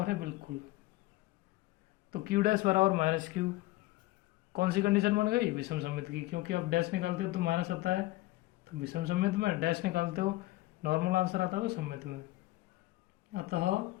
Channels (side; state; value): right; quieter; 18.4 dB